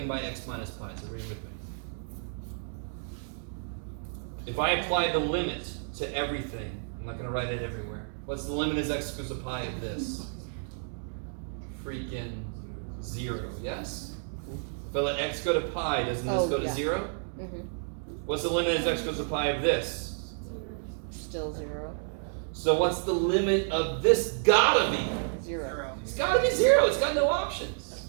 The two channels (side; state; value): left; silent; digital silence